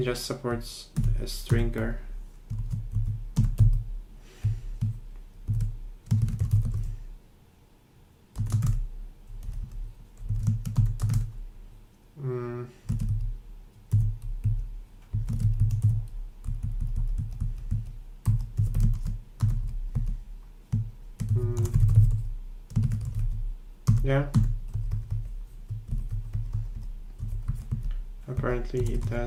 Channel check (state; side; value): identical; both; correlation 1.00